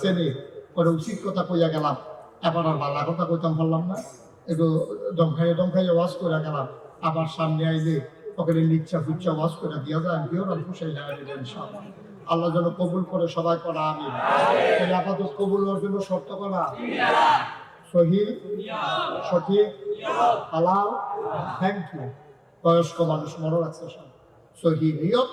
পরে উচিত কথা কইয়া গেলাম, এবার আর ভালো কথা কইতাম পারলাম না, একটু দমখাইয়ে ওয়াশ করে গেলাম। আবার সামনে আইলে ওখানে লিচ্ছা ফুচ্ছা ওয়াশ করে দিয়া যায়, কেউ না খুশাই যায় ইনশাআল্লাহ। আল্লাহ যেন কবুল করে, সবাই করা আমিন। আপাতত কবুল হওয়ার জন্য শর্ত করা সহি, সঠিক, হালাল, থ্যাংক ইউ। বয়স্ক মানুষ মনে রাখছে সব, সহি নিয়ম,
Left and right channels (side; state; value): both; identical; correlation 1.00